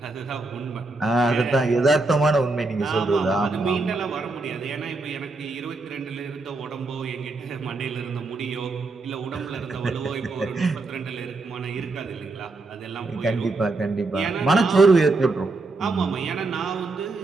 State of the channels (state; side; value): quieter; left; 3.3 dB